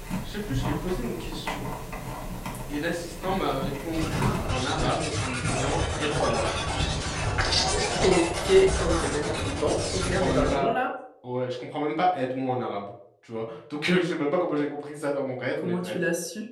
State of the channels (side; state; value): both; identical; correlation 1.00